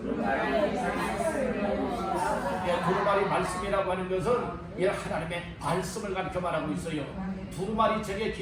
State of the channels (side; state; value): both; identical; correlation 1.00